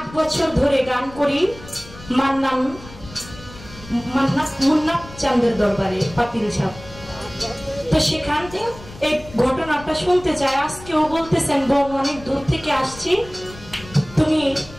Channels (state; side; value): noise; left; rumble, 17 dB below the sound